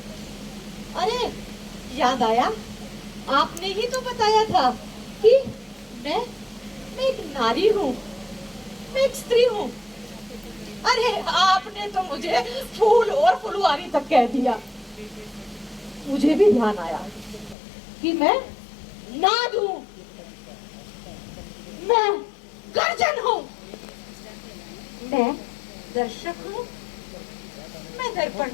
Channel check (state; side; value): drops out; right; at 17.6 s